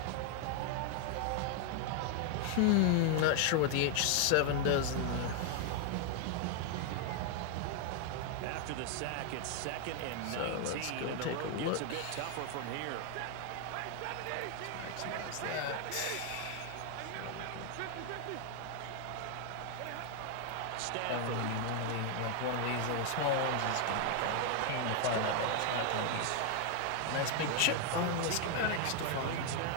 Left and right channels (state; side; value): different; both; correlation 0.00